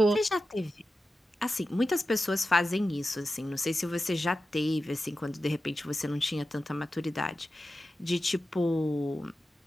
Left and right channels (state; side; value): normal; both; correlation 0.93